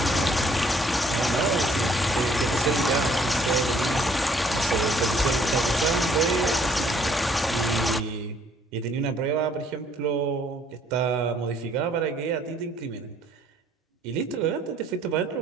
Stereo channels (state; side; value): normal; both; correlation 0.63